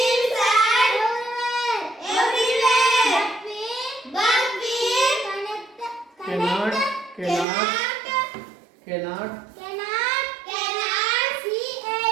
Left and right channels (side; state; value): left; drops out; at 7.5 s